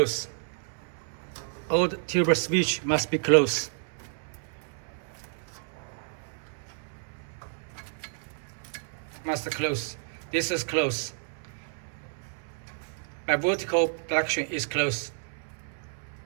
All the tube switch must be closed. Must close. This is closed. By vertical direction is closed.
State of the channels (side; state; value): left; silent; 58 dB below the other